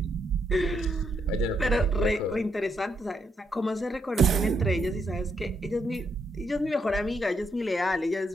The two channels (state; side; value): normal; both; correlation 0.77